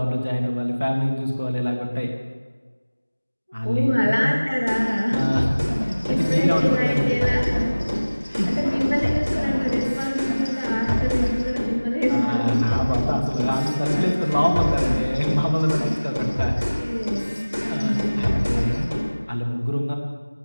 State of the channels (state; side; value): inverted; both; correlation -1.00